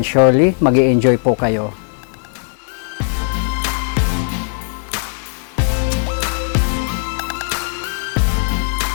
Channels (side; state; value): right; silent; digital silence